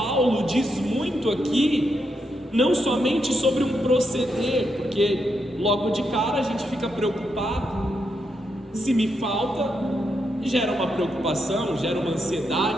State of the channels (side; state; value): both; normal; correlation 0.82